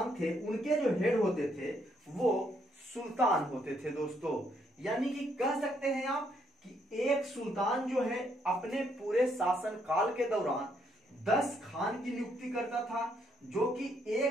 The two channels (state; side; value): normal; both; correlation 0.73